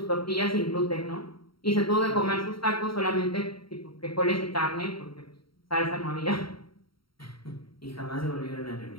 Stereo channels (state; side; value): late; right; 0.74 ms